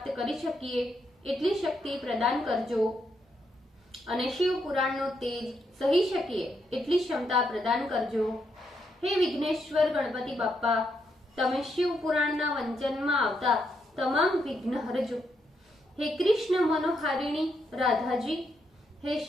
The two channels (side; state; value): both; normal; correlation 0.79